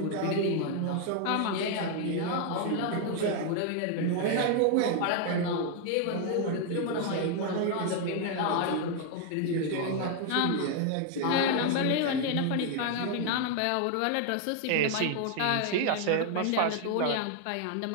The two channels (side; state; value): both; different; correlation 0.00